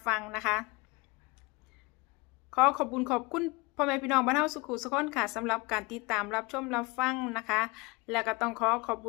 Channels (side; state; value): right; quieter; 25.7 dB